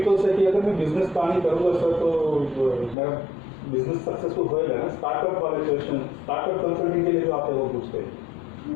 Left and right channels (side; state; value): right; drops out; at 3.0 s